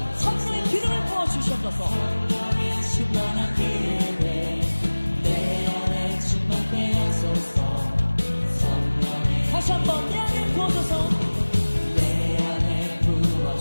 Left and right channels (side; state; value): both; inverted; correlation -1.00